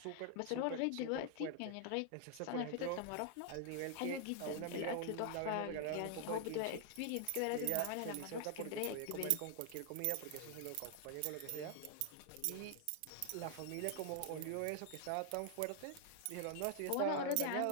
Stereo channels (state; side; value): different; both; correlation 0.00